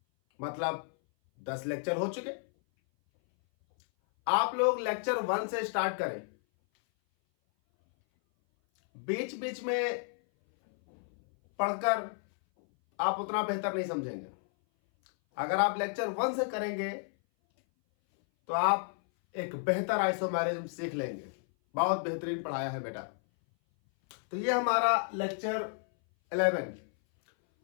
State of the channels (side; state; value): right; silent; 57 dB below the other